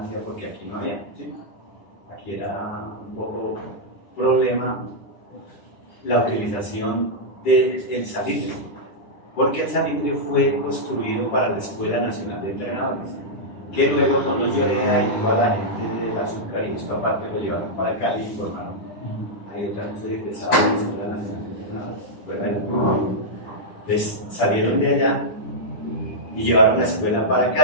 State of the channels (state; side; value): late; right; 10 ms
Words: porque aquí no había, ¿sí? Aquí era un poco problema la utilización del salitre, porque el salitre fue construido para la Escuela Nacional de Entrenadores, que luego cuando Lloreda y toda la gente del azúcar y esto aparte lo llevaron para Cali y formaron. Ahí otra vez soy egresado de la Escuela Nacional de Entrenadores. Entonces salieron de allá y llevaron la escuela para